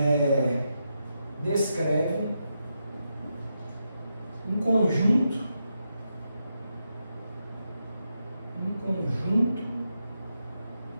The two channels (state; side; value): inverted; both; correlation -0.85